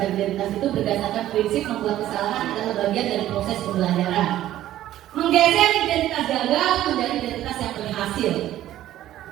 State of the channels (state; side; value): quieter; left; 13.3 dB